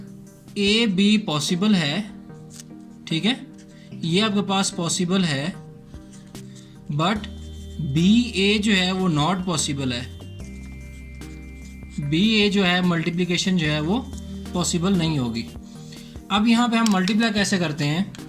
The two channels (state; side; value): identical; both; correlation 1.00